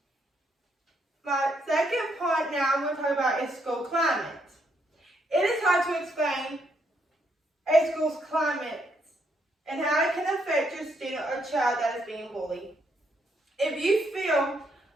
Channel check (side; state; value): both; normal; correlation 0.75